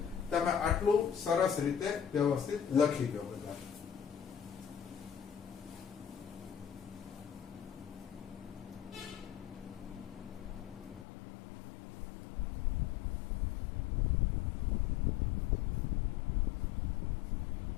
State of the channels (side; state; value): right; drops out; at 11.1 s